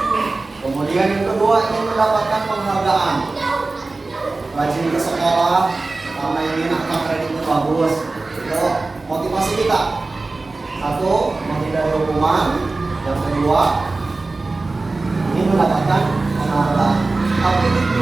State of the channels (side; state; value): left; quieter; 3.4 dB